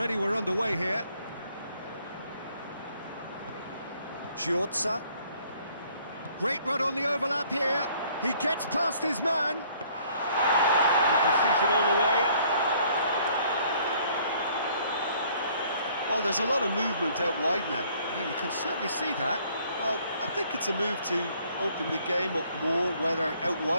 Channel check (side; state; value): both; inverted; correlation -0.61